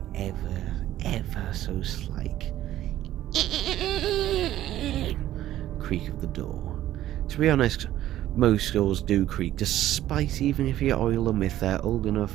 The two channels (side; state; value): left; quieter; 13.3 dB